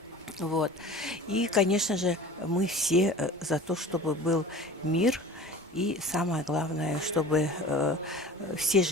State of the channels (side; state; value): both; normal; correlation 0.40